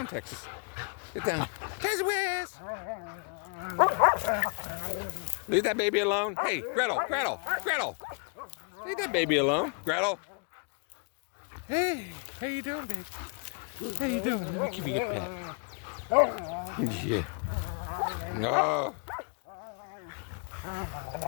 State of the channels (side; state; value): right; quieter; 35.9 dB